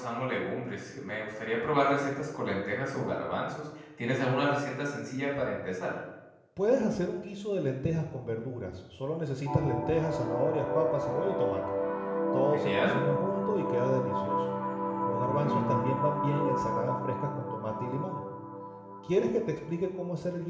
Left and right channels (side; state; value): both; identical; correlation 1.00